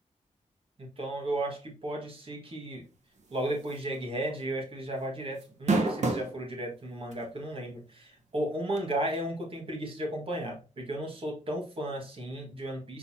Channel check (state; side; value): normal; both; correlation 0.63